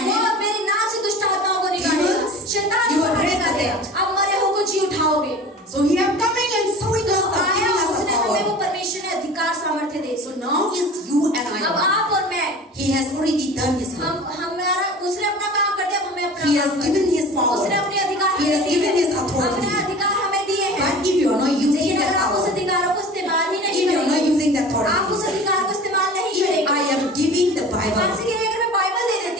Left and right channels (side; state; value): both; normal; correlation 0.39